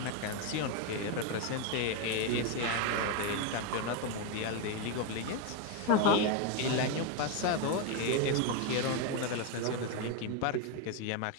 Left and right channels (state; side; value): different; both; correlation 0.02